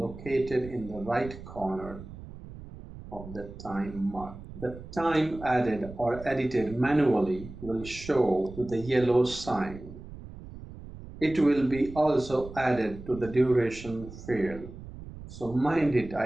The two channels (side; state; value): right; noise; rumble, 14 dB below the sound